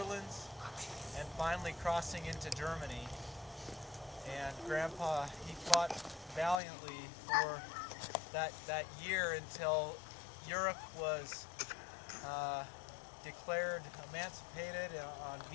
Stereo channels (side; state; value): right; drops out; at 6.6 s